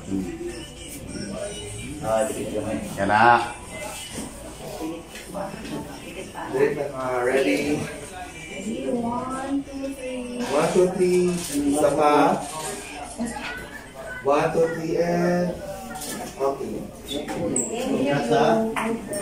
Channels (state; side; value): identical; both; correlation 1.00